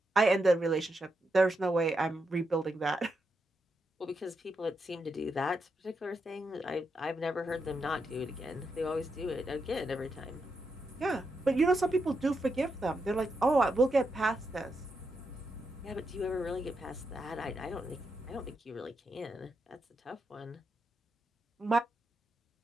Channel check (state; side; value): normal; both; correlation 0.84